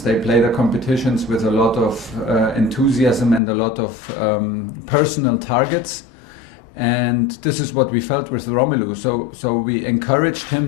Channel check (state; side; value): drops out; right; at 3.4 s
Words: They played the competitions with a lot of enthusiasm and a lot of personal targets. And this is what we felt with Romelu. So we encouraged